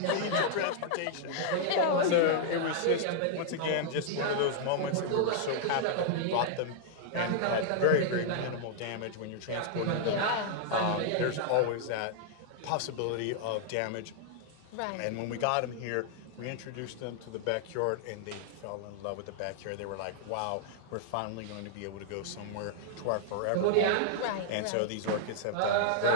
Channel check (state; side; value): different; both; correlation -0.01